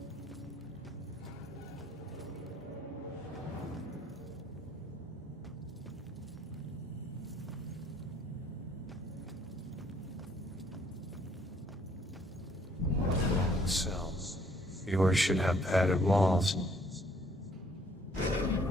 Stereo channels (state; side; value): normal; both; correlation 0.63